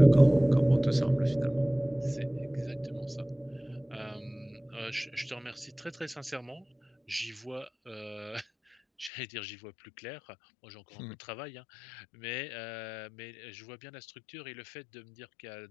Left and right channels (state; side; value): drops out; right; at 9.1 s